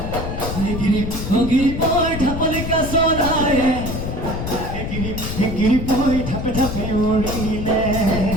গিৰিপৈ ধাপলিকা চৰায়ে গিৰিপৈ ধাপে ধাপে উৰিলে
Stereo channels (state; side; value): noise; left; rumble, 5 dB below the sound